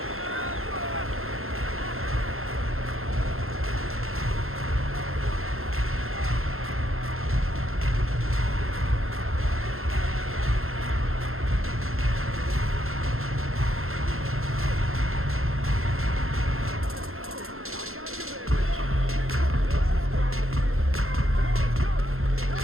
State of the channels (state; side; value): late; left; 0.61 ms